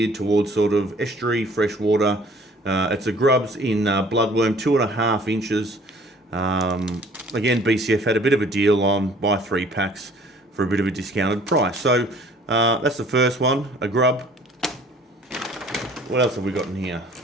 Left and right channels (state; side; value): normal; both; correlation 0.54